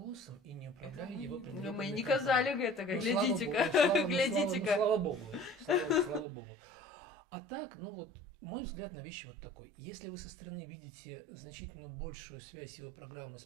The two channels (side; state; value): left; drops out; at 6.2 s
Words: и не управляю Это его мы- предвыборной Ну, мы не кампанией. казали гэтага, Ну, слава глядзіце-ка, богу, слава- ну, глядзіце-ка. Слава богу. Слава богу. А так, ну вот, мой взгляд на вещи вот такой. Если вы со стороны видите значительно большую связь его программы с